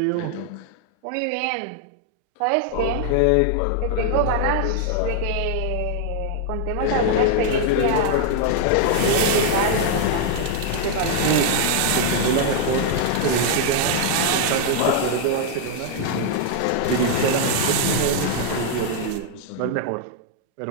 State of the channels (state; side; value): different; both; correlation 0.00